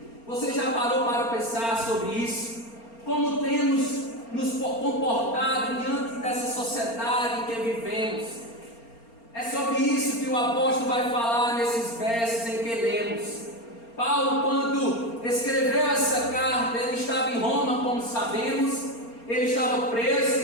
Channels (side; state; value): right; late; 4.3 ms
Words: Você já parou para pensar sobre isso? Como temos nos comportado diante dessa sociedade em que vivemos? É sobre isso que o apóstolo vai falar nesses versos em que lemos. Paulo, quando escreveu essa carta, ele estava em Roma, como sabemos, ele estava